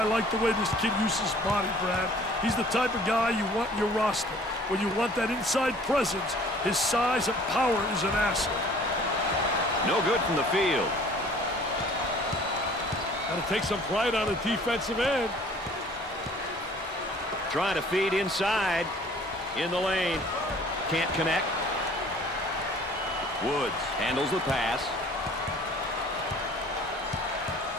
like the way this kid uses his body, Brad. He's the type of guy you want in your roster. When you want that inside presence, his size and power is an asset. No good from the field. Got to take some pride on the defensive end. Trying to feed inside. In the lane. Can't connect. Woods handles the pass.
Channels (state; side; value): normal; both; correlation 0.52